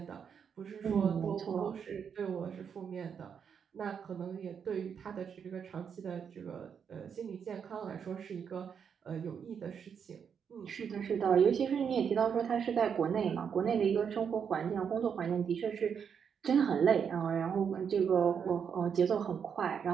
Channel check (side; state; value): left; quieter; 7.2 dB